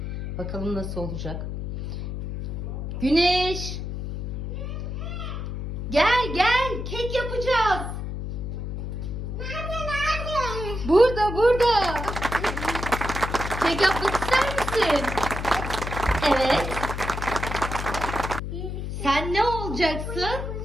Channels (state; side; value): noise; left; hum, 5 dB below the sound